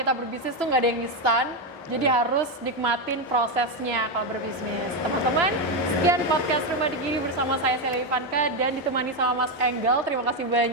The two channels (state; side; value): normal; both; correlation 0.07